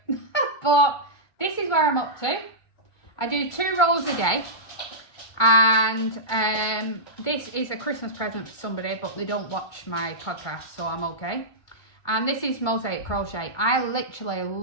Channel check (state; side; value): late; right; 2.2 ms